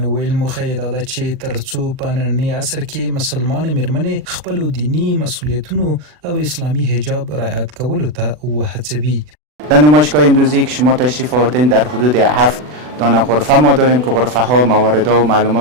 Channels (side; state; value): left; late; 40 ms